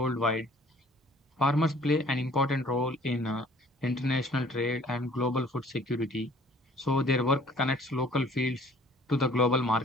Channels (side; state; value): both; normal; correlation 0.55